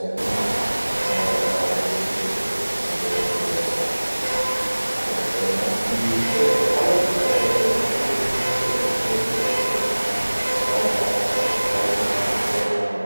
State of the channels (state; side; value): inverted; both; correlation -1.00